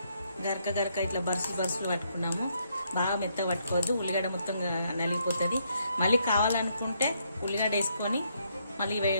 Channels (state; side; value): inverted; both; correlation -0.74